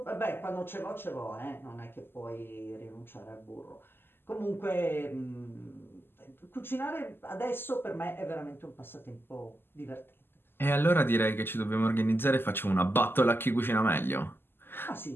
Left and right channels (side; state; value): right; late; 0.10 ms